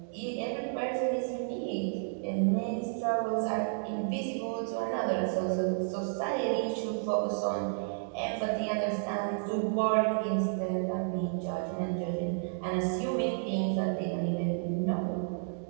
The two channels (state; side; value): silent; left; digital silence